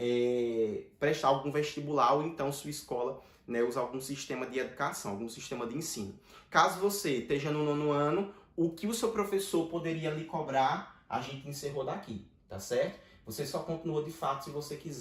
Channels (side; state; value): both; identical; correlation 1.00